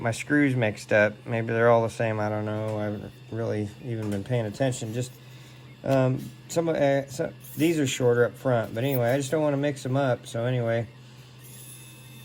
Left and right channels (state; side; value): identical; both; correlation 1.00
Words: my screws mixed up. Maybe they're all the same, I don't know. I haven't really even been paying attention. Just these are shorter up front, but anyway, I just don't want to mix them up. So anyway,